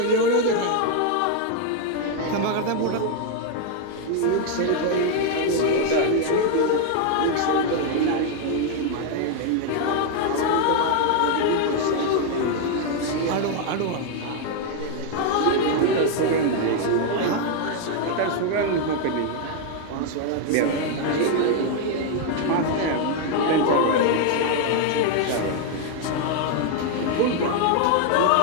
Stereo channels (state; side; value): different; both; correlation 0.00